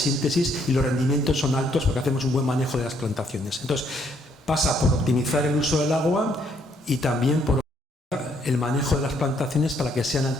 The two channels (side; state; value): both; normal; correlation 0.69